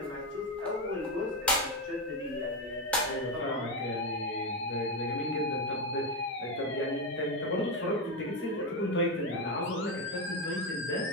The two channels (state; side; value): normal; both; correlation 0.11